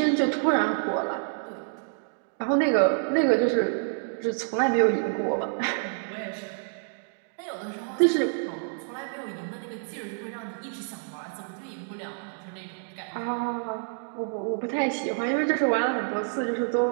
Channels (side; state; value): left; silent; digital silence